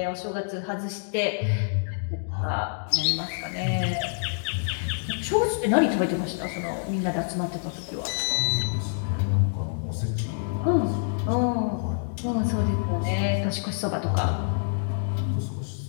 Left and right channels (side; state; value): right; silent; digital silence